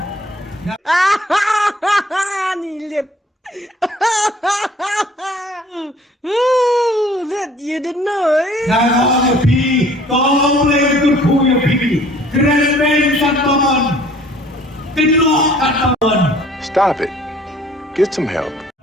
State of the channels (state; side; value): normal; both; correlation 0.54